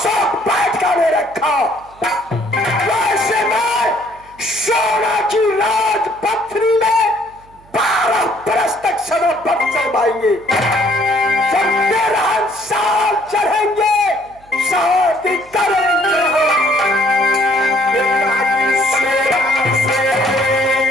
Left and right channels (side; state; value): right; noise; hum, 27 dB below the sound